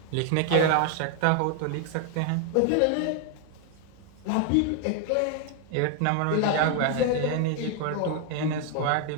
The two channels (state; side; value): different; both; correlation 0.00